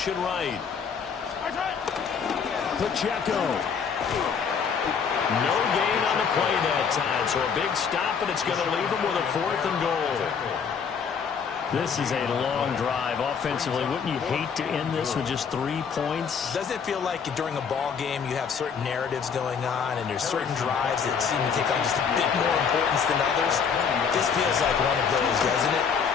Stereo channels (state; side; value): quieter; right; 6.4 dB